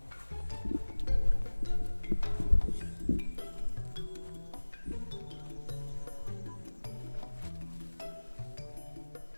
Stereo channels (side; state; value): both; inverted; correlation -1.00